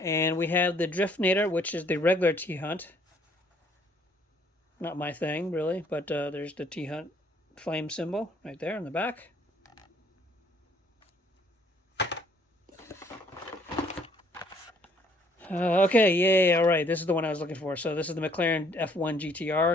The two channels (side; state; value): both; normal; correlation 0.63